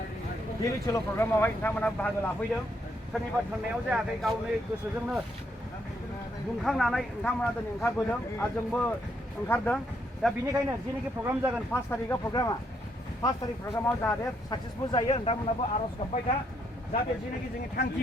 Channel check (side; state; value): both; normal; correlation 0.74